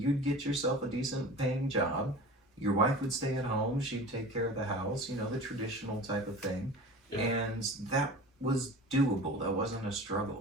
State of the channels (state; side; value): normal; both; correlation 0.37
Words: get yourself a decent paying job. Your wife would stay at home. She'd take care of the house, you know, the traditional type of thing. Yeah. And that was doable. That wasn't a